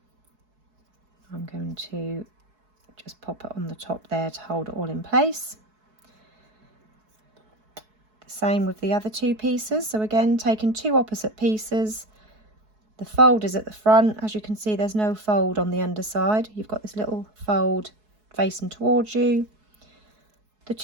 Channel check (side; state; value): left; late; 4.7 ms